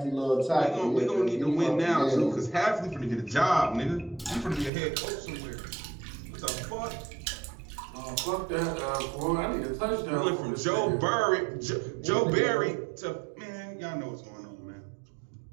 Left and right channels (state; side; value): drops out; left; at 4.7 s